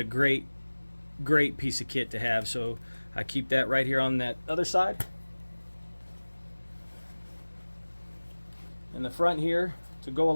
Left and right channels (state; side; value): inverted; both; correlation -1.00